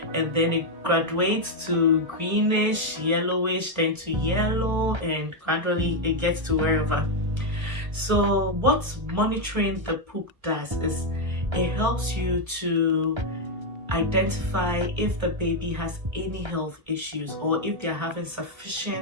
And then it graduates to greenish, yellowish, then to yellow, and gradually it gets to wherever. So what monitoring the poop does is it helps you to identify if the baby has any health issues or if they're having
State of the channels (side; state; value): left; late; 1.3 ms